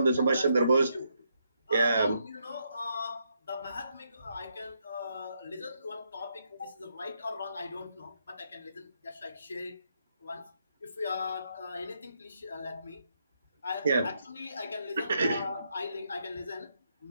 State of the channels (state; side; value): inverted; both; correlation -0.78